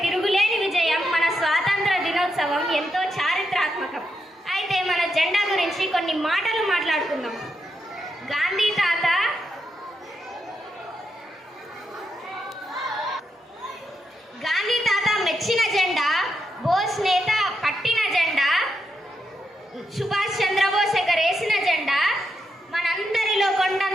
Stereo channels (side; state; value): both; normal; correlation 0.83